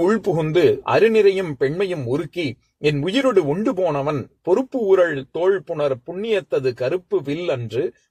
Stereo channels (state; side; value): identical; both; correlation 1.00